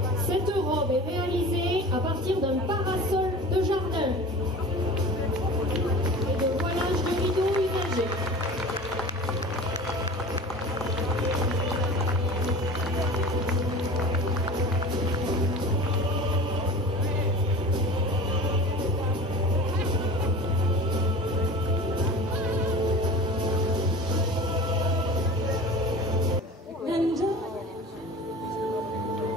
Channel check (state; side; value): normal; both; correlation 0.37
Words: Cette robe est réalisée à partir d'un parasol de jardin et de voilage de rideaux usagés.